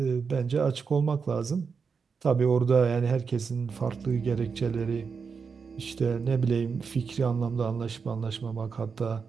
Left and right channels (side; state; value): left; quieter; 5.6 dB